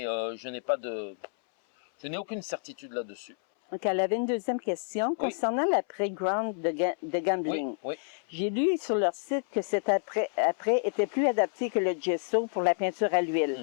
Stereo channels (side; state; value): right; silent; 59 dB below the other